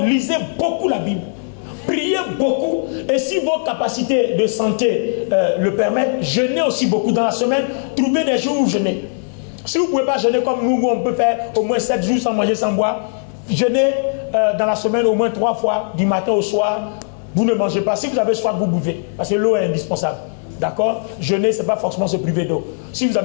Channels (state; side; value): silent; right; 57 dB below the other